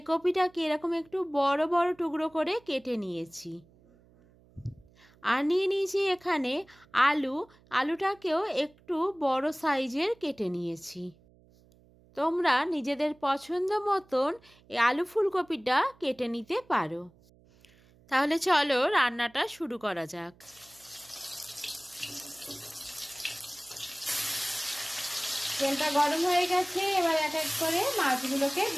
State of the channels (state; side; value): noise; right; hum, 29 dB below the sound